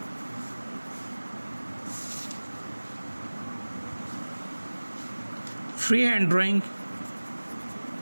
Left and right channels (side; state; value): both; inverted; correlation -1.00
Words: फ्री हैंड ड्राइंग,